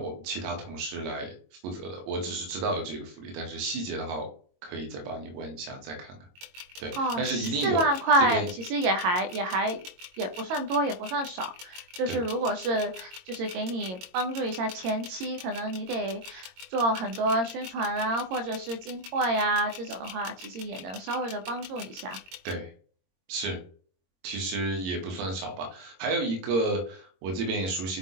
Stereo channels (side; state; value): left; late; 22 ms